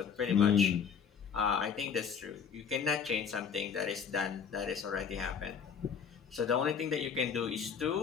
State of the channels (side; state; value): right; quieter; 6.9 dB